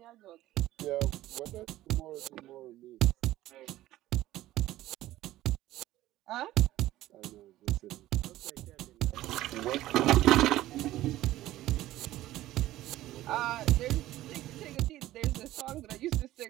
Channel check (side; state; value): left; quieter; 15.2 dB